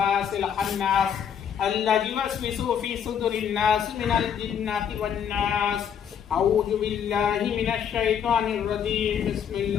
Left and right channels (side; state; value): right; quieter; 8.2 dB